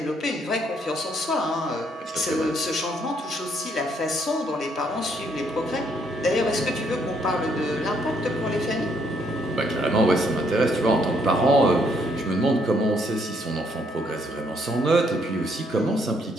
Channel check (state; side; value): normal; both; correlation 0.70